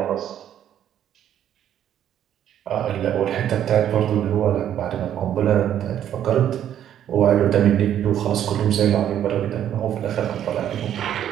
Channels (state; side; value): quieter; left; 10.5 dB